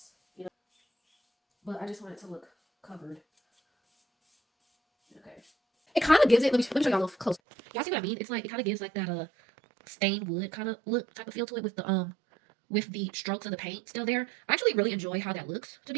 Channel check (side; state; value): left; drops out; at 7.4 s